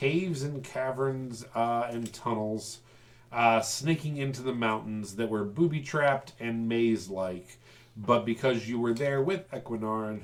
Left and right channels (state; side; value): identical; both; correlation 1.00